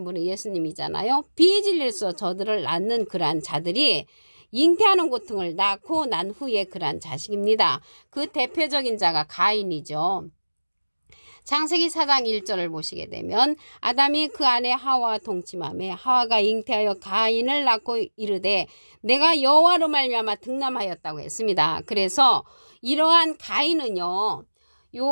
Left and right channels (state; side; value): inverted; both; correlation -1.00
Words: 분은 예수님이잖아요. 비진리로서 저들을 낳는 그러한 자들이 잉태하는 고통을 낳고 난 후에 그러한 자식입니다. 그 대표적인 자가 가인이죠. 창세기 4장 1절을 보시게 되면 아담이 그 아내 하와와 동침하며 하와가 잉태하여 가인을 낳고 이르되 내가 여호와로 말미암아 득남하였다고 했습니다. 그래서 이러한 가인은요.